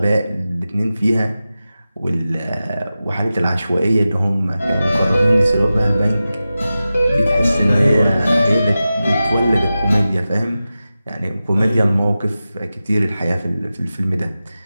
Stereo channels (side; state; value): both; inverted; correlation -0.94